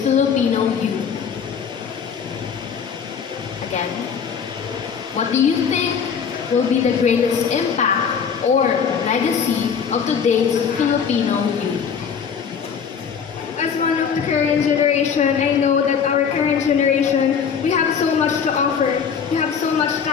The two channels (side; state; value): right; quieter; 6.8 dB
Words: Filipino youth? Again, what do you think will be the greatest impact or legacy of today's Filipino youth? As one of the current generation, I know that our current generation, we have so much to offer. We have so much